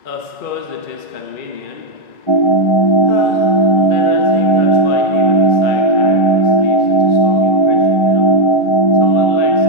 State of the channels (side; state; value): right; late; 2.3 ms